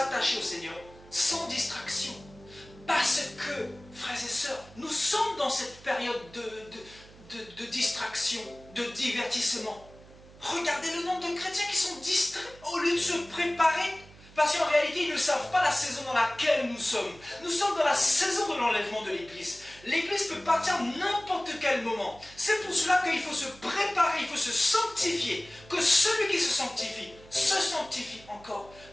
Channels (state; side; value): noise; right; hum, 22 dB below the sound